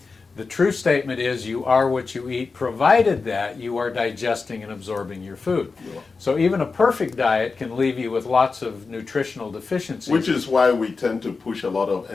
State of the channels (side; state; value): right; quieter; 4.4 dB